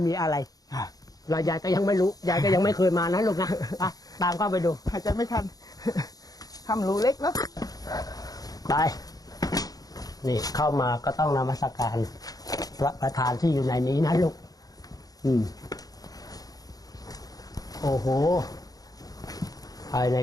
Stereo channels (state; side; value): late; right; 0.18 ms